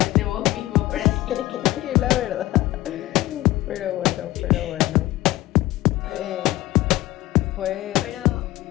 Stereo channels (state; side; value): quieter; right; 16.8 dB